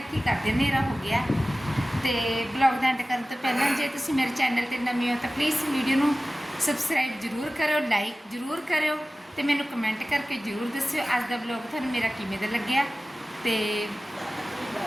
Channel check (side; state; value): both; normal; correlation 0.96